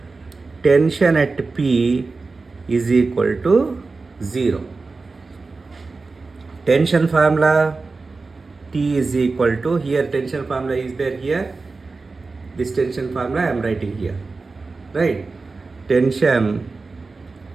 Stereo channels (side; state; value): left; quieter; 3.9 dB